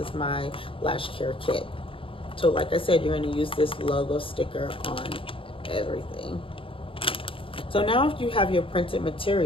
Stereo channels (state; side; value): late; right; 0.26 ms